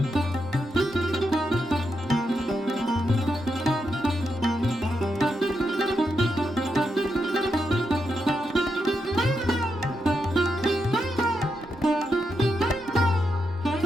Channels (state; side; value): normal; both; correlation 0.84